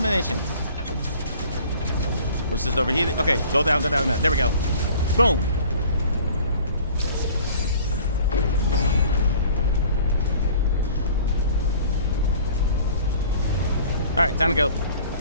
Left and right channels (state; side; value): inverted; both; correlation -0.49